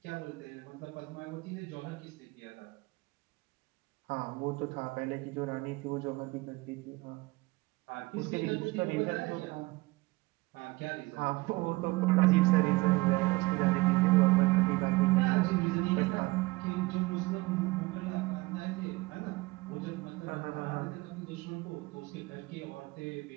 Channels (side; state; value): left; quieter; 22.5 dB